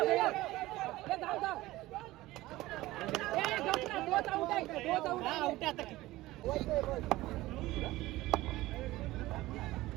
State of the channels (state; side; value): quieter; left; 17.8 dB